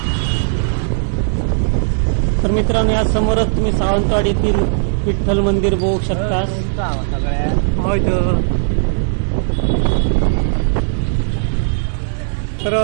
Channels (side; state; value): left; silent; 63 dB below the other